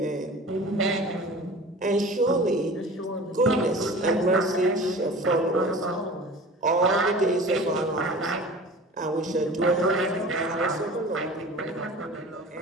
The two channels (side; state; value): both; normal; correlation 0.39